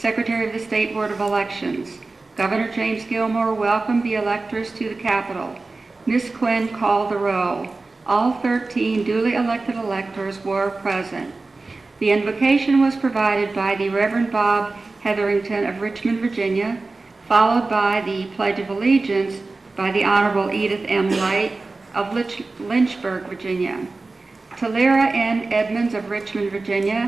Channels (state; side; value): quieter; left; 3.5 dB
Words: of the State Board of Elections. Governor James Gilmore welcomed the electors to the Capitol. Ms. Quinn called the roll. All 13 duly elected electors were present. The invocation was provided by the Reverend Bob Hetherington of Richmond, Virginia, followed by the Pledge of Allegiance by the Honorable Edith M. Light of Lynchburg, Virginia. Talera N. Edmonds of Richmond,